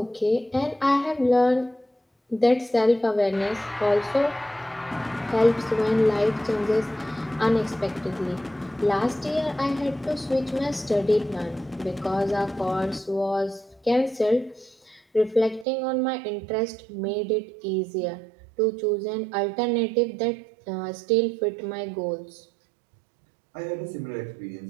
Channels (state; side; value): drops out; left; at 15.7 s